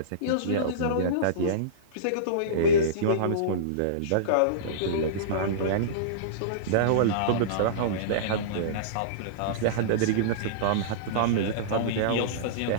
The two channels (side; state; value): both; different; correlation -0.05